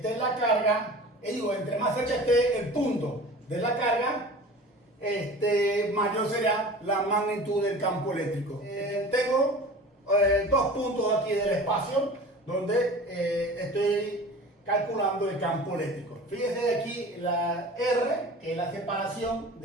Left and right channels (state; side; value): normal; both; correlation 0.39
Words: la carga, entre más cerca esté el punto de la carga, mayor será la magnitud del campo eléctrico. Tengo 2 puntos aquí del espacio donde estoy calculando el campo eléctrico. Fíjese aquí la R, que es la separación